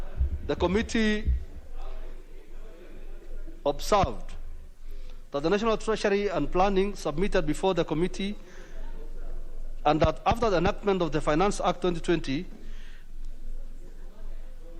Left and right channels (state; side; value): identical; both; correlation 1.00